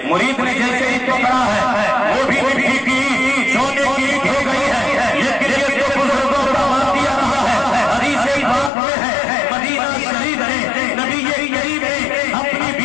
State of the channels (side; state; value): right; drops out; at 8.7 s